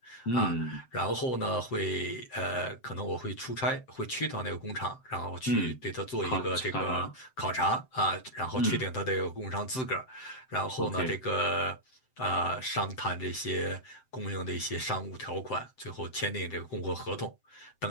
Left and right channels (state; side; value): late; right; 7.7 ms